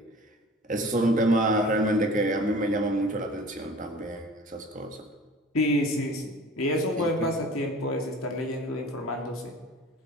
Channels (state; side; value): normal; both; correlation 0.43